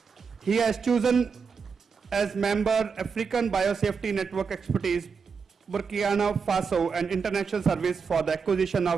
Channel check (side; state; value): left; quieter; 5.6 dB